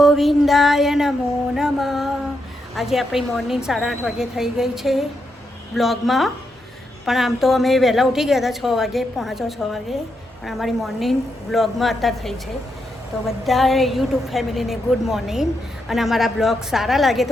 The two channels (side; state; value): both; normal; correlation 0.82